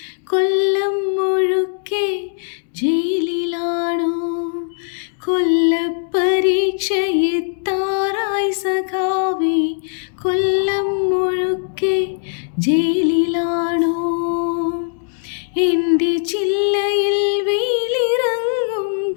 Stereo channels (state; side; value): silent; right; digital silence